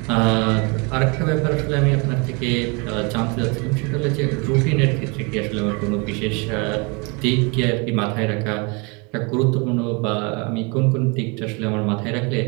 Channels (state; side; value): quieter; left; 30.6 dB